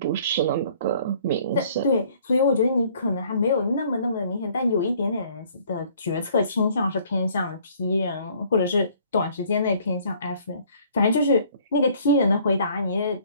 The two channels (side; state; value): both; inverted; correlation -0.58